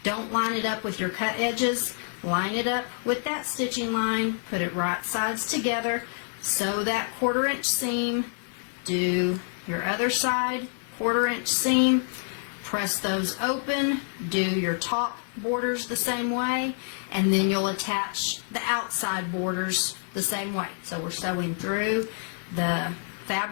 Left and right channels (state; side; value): silent; right; 58 dB below the other